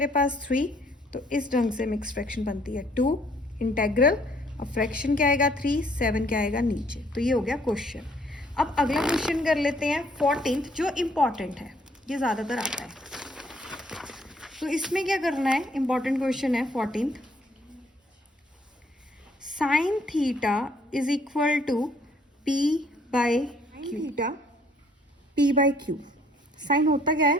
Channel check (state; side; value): normal; both; correlation 0.64